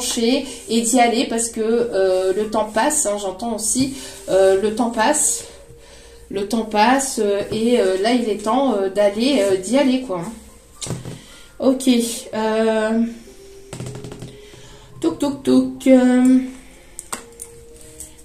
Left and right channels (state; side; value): identical; both; correlation 1.00